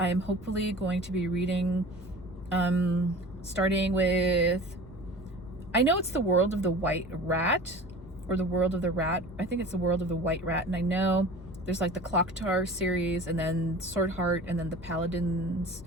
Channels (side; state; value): both; normal; correlation 0.39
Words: am hopefully going to be reading, starting with, I know it's The World of the White Rat, or The World of the Rat. I think it's The World of the White Rat, and I know there's like the Clocktar series, and then Swordheart, and then the Paladins,